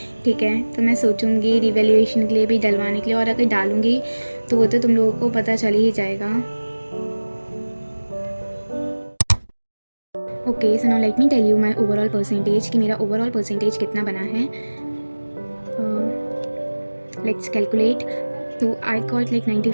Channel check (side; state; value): both; inverted; correlation -1.00